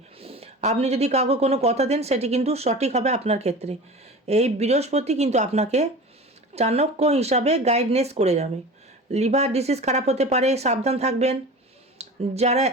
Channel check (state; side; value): normal; both; correlation 0.34